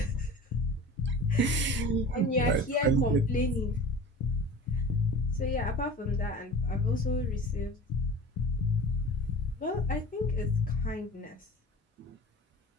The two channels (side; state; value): both; normal; correlation 0.37